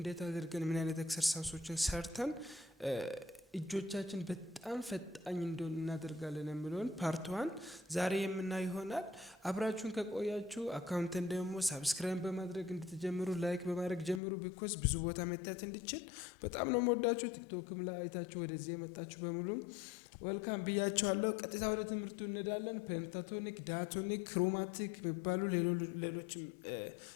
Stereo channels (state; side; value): drops out; right; at 14.2 s